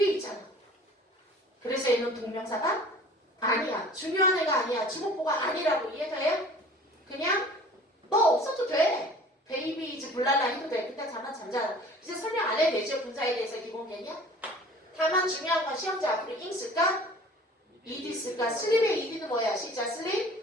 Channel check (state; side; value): normal; both; correlation 0.46